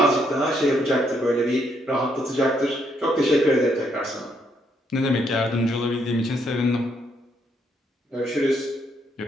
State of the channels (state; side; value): normal; both; correlation 0.73